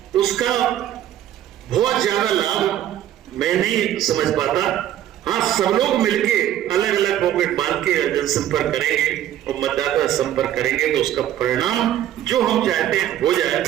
उसका बहुत ज्यादा लाभ मैं नहीं समझ पाता। हाँ, सब लोग मिलके अलग अलग पॉकेट बांध के जनसंपर्क करेंगे और मतदाता संपर्क करेंगे तो उसका परिणाम जो हम चाहते हैं हो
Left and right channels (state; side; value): quieter; left; 11.8 dB